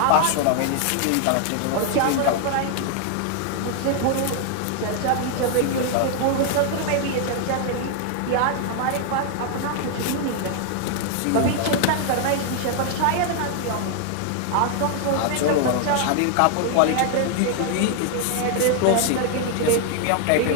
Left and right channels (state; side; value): different; both; correlation 0.00